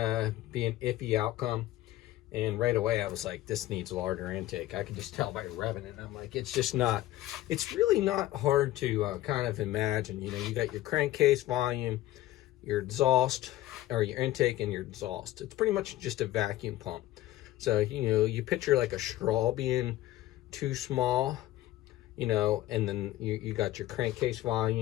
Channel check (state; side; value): quieter; right; 15.3 dB